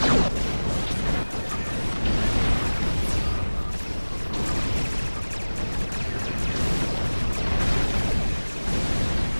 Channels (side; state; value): both; inverted; correlation -1.00